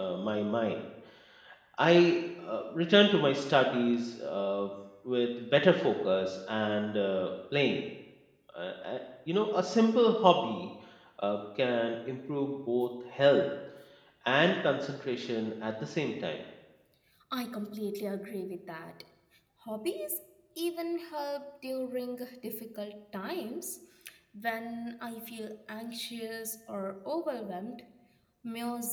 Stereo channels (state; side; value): identical; both; correlation 1.00